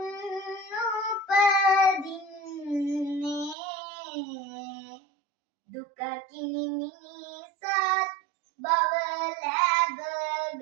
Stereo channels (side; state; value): left; drops out; at 3.6 s